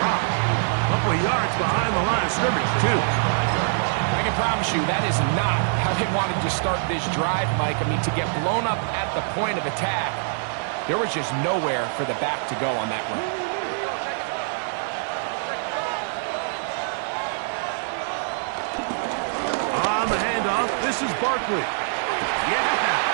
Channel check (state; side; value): silent; left; digital silence